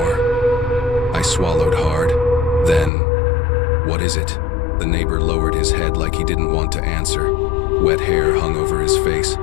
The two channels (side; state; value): right; drops out; at 2.9 s